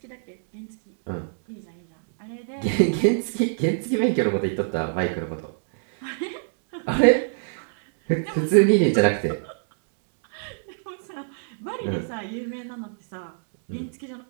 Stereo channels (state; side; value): silent; left; digital silence